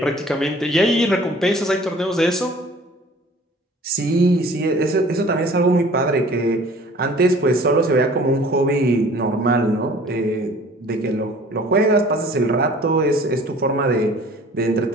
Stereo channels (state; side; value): normal; both; correlation 0.49